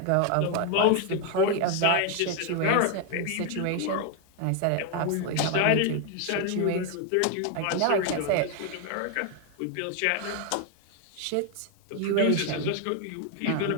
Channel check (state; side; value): different; both; correlation 0.00